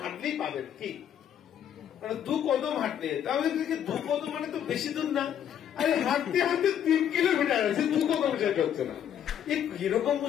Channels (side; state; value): right; quieter; 9.5 dB